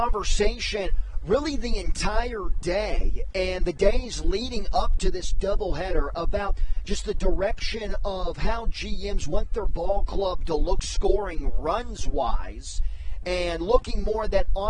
really the entire day and the days leading up to this doubleheader about just the direction of how GMs want their ball club to look scoring runs-wise and looking more at that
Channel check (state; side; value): identical; both; correlation 1.00